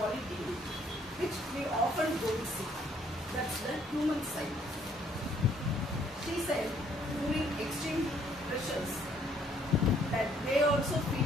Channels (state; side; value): normal; both; correlation 0.65